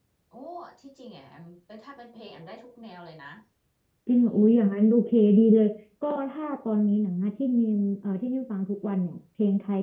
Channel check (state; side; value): identical; both; correlation 1.00